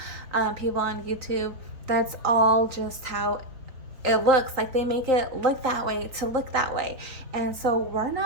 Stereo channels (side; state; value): left; late; 3.9 ms